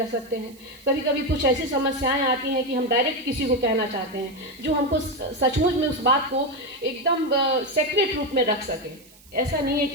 सकते हैं। कभी कभी कुछ ऐसी समस्याएं आती हैं कि हम डायरेक्ट किसी को कहना चाहते हैं जो हमको सचमुच में उस बात को एकदम सेक्रेट रूप में रख सके। ऐसा नहीं है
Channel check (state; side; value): noise; right; hiss, 25 dB below the sound